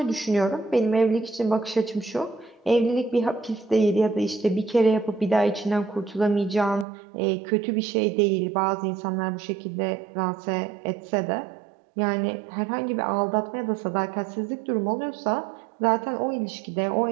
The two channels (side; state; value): left; drops out; at 6.9 s